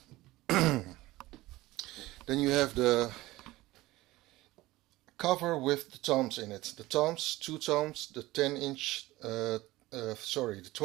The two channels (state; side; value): quieter; left; 18.5 dB